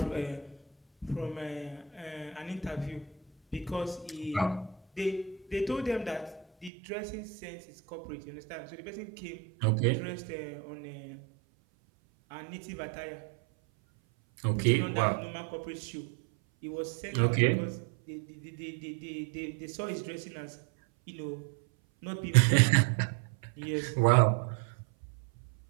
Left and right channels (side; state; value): left; drops out; at 6.7 s